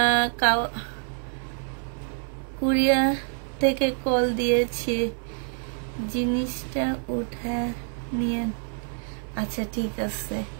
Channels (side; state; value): left; silent; 57 dB below the other